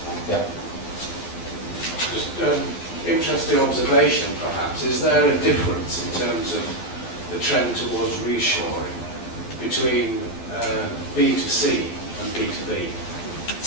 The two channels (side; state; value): right; late; 12 ms